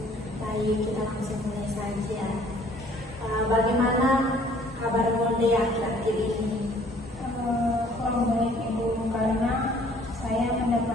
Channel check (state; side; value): normal; both; correlation 0.57